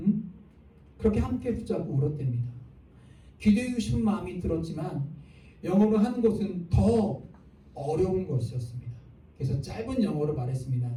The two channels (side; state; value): both; identical; correlation 1.00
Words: 그렇게 함께 붙잡고 울었답니다. 기도하고 싶은 마음이 들었지만 영어로 하는 것은 더 어려운 것이었습니다. 그래서 짧은 영어로 말했습니다.